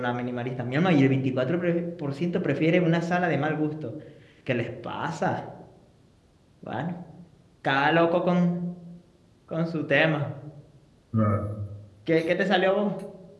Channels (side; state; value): both; identical; correlation 1.00